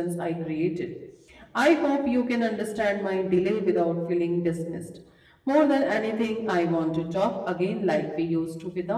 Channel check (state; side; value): identical; both; correlation 1.00